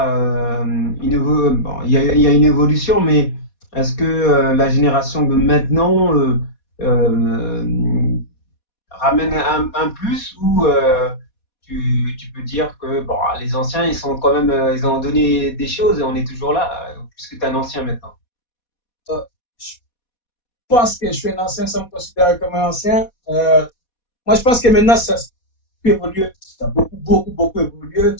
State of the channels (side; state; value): right; late; 4.2 ms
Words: il y a une évolution, mais est-ce que la génération de maintenant ramène un plus ou tu peux dire que bon, les anciens, ils sont quand même, ils ont donné des choses et on est toujours là, puisque tu es un ancien maintenant. Euh, je pense que je suis un ancien sans me considérer comme un ancien. Moi, je pense que maintenant, ça a pu évoluer. Ça a beaucoup évolué, que